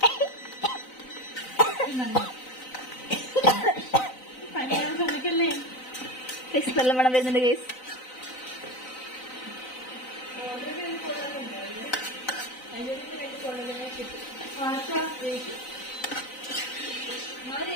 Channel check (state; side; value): late; right; 3.9 ms